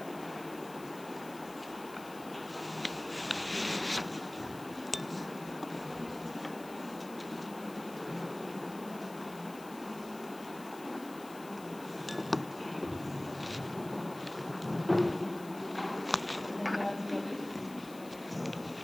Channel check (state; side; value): noise; left; hiss, 18 dB below the sound